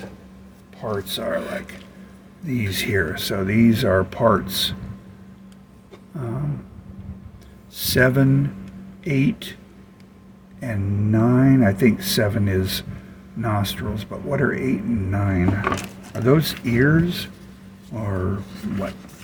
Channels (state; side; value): identical; both; correlation 1.00